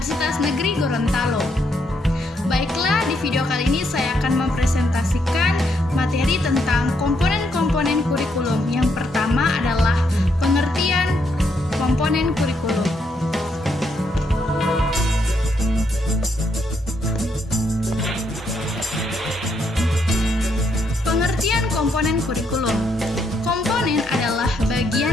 Negeri Gorontalo. Baiklah, di video kali ini saya akan mempresentasikan materi tentang komponen-komponen kurikulum. Yang pertama adalah pengertian komponen kurikulum. Pengertian komponen kurikulum. Komponen adalah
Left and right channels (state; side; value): normal; both; correlation 0.76